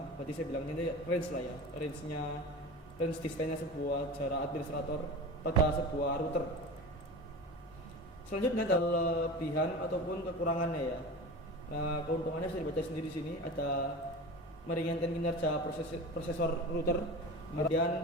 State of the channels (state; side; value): normal; both; correlation 0.31